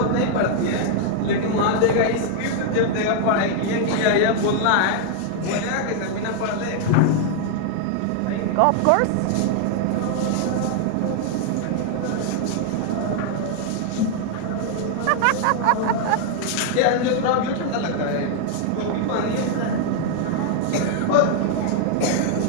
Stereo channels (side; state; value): both; different; correlation 0.00